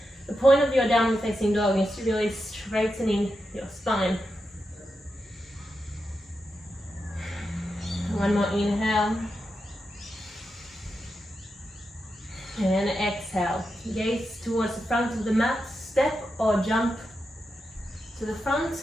The point of your downward facing dog is really straightening your spine. One more inhale. And exhale. Gaze towards the front of the mat. Step or jump to the front.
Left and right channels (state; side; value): normal; both; correlation 0.88